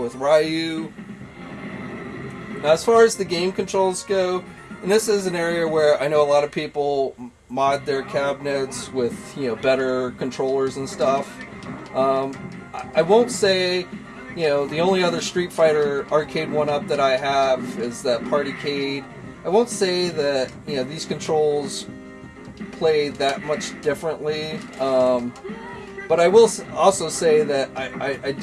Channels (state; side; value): identical; both; correlation 1.00